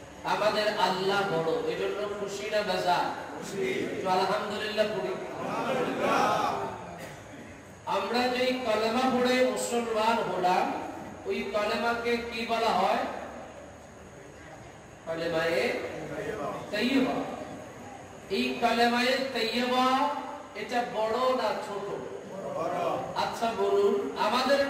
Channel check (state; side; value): identical; both; correlation 1.00